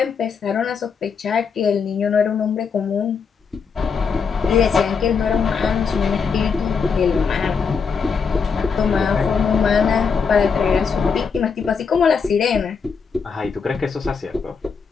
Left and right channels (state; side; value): quieter; right; 5.7 dB